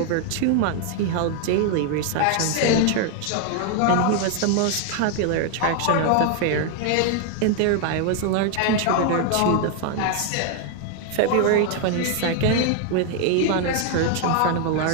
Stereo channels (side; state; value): both; different; correlation 0.00